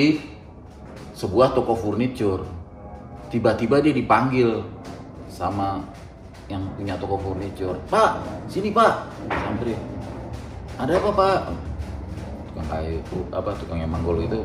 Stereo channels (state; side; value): identical; both; correlation 1.00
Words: sebuah toko furniture. Tiba-tiba dia dipanggil sama yang punya toko furniture. Pak, sini Pak. Samperin. Ada apa Pak? Tukang kayu itu, tukang yang manggul itu